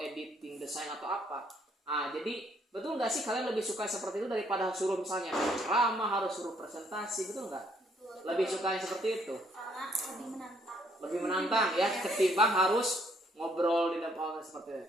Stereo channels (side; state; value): both; normal; correlation 0.67